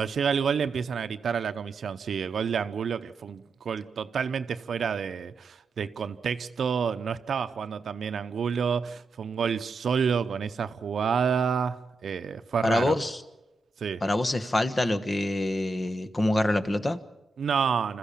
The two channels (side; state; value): left; quieter; 3.2 dB